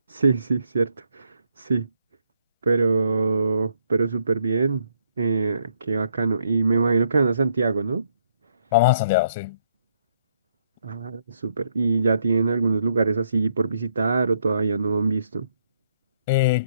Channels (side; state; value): both; inverted; correlation -0.71